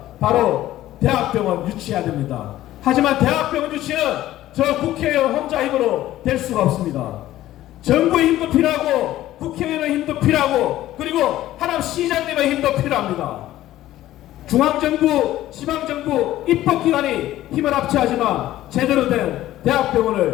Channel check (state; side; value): quieter; right; 14.4 dB